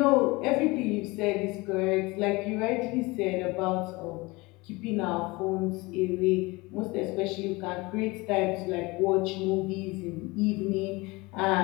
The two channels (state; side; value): quieter; right; 23.5 dB